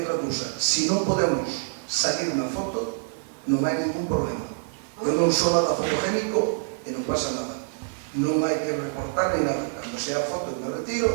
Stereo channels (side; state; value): left; silent; digital silence